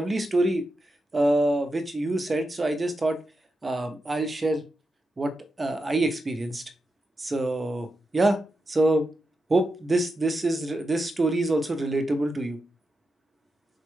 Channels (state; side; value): normal; both; correlation 0.88